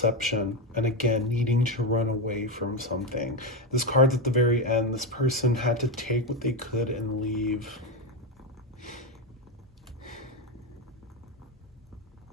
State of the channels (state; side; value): normal; both; correlation 0.10